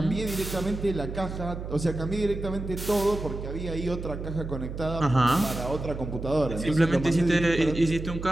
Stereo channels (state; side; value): noise; right; hum, 7 dB below the sound